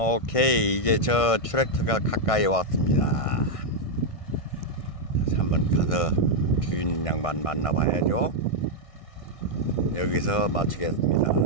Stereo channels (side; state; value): right; late; 1.5 ms